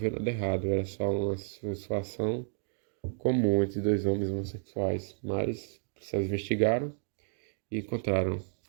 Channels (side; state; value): left; silent; 57 dB below the other